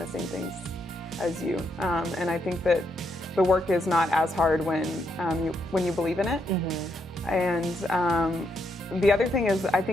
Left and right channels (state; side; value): normal; both; correlation 0.78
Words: same things as you. And I think that the work is not as hard when you believe in it. And the other thing is, I